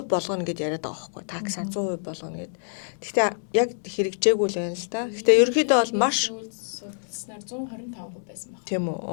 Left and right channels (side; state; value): right; silent; digital silence